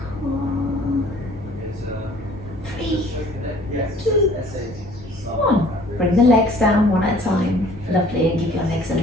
Cool. 3, 2, 1. Bring the legs down one at a time. Lovely, and give your legs a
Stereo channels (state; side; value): noise; left; hum, 21 dB below the sound